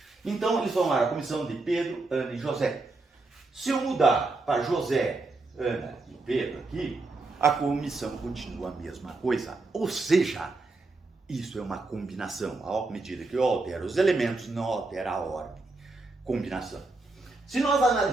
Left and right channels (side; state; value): left; quieter; 3.3 dB